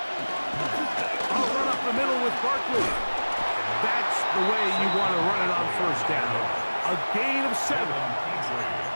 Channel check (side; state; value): both; inverted; correlation -1.00